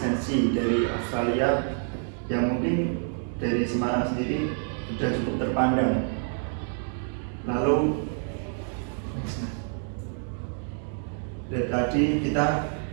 dari Australia yang mungkin dari Semarang sendiri sudah cukup terpandang. Lalu dari tadi kita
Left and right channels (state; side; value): silent; left; 58 dB below the other